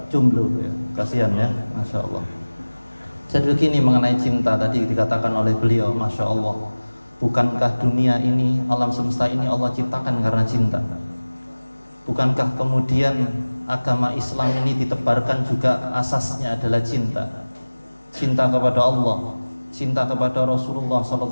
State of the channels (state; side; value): inverted; both; correlation -1.00